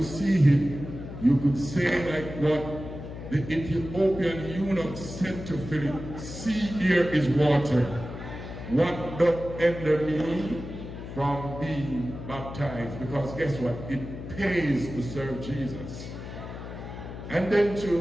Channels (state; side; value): noise; left; hum, 10 dB below the sound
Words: see him, you could say like what the Ethiopian eunuch said to Philip, see, here is water. What doth hinder me from being baptized? Because guess what? It pays to serve Jesus. And then